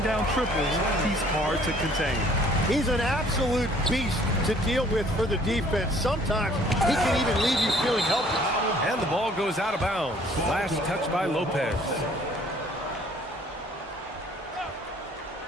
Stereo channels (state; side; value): normal; both; correlation 0.57